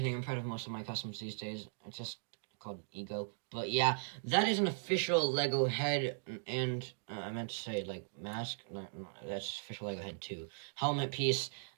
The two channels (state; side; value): silent; left; digital silence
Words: I'm proud of most of my customs these days. It's just called Ego. But yeah, that is an official Lego head, and I meant to say, like, mask. No, that's official Lego head too. Helmet piece.